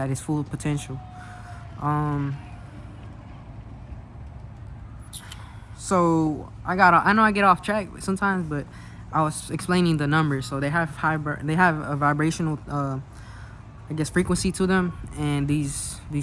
its full potential. So I know I get off track sometimes, but I was explaining the numbers. So they have a vibrational, frequency to them, and these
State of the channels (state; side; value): identical; both; correlation 1.00